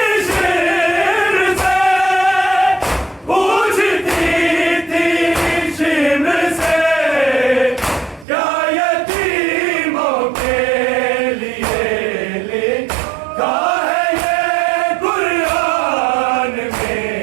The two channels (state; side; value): drops out; left; at 8.2 s